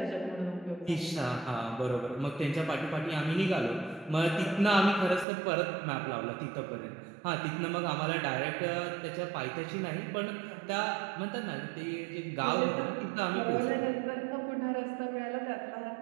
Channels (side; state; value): left; drops out; at 5.2 s